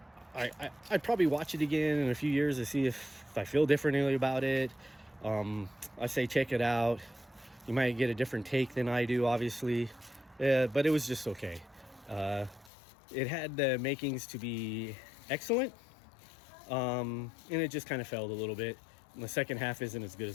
probably watch it again in a few years to see if I feel differently about it. I say check it out. You might get a different take than I do, obviously, but it was just okay. It had the makings to be excellent, and it just kind of failed a little bit. And the second half isn't as good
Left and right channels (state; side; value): drops out; right; at 12.7 s